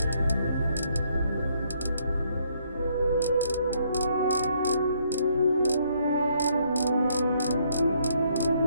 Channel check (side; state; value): both; inverted; correlation -0.70